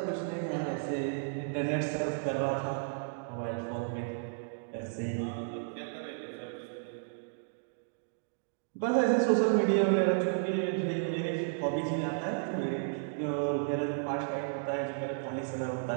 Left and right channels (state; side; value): silent; left; digital silence